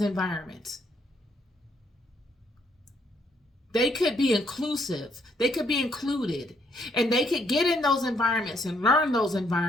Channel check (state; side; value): normal; both; correlation 0.71